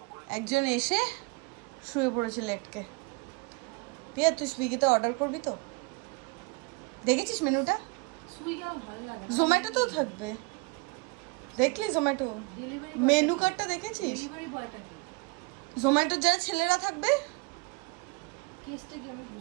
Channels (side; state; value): left; quieter; 28.2 dB